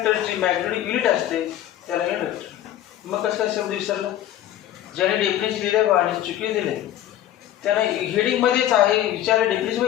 मॅग्निट्यूड युनिट असते त्याला युनिट वेक्टर. मग कसं शब्द विसरला? ज्याने डेफिनेशन लिहिलं आणि चुकी दिले त्याने हेडिंग मध्येच आहे विचारलं डेफिनेशन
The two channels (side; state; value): right; quieter; 12.3 dB